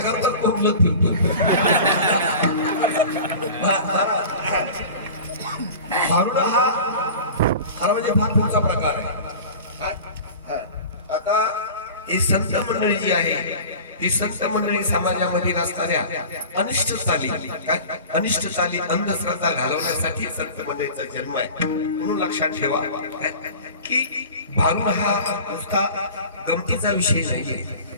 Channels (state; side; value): inverted; both; correlation -0.37